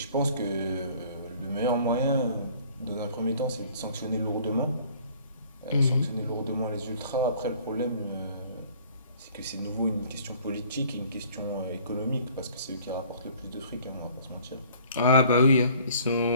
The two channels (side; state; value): both; inverted; correlation -0.54